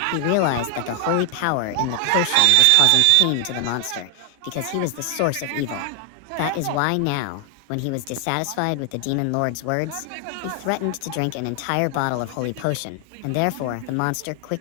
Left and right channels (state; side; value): different; both; correlation 0.00